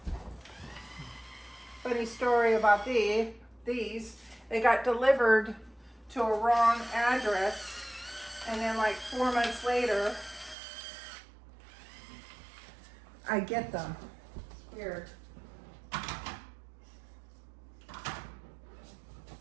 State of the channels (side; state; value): left; drops out; at 10.6 s